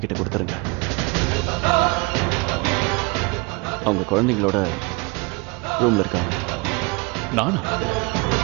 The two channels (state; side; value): quieter; left; 27.5 dB